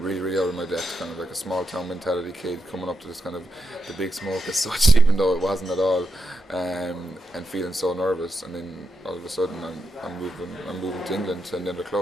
out of my depth, kind of like a small town mentality kid coming up to this kind of the big smoke as such, even though it wasn't at all, and feeling so nervous. And then all of a sudden I'm moving to England to another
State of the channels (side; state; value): both; normal; correlation 0.85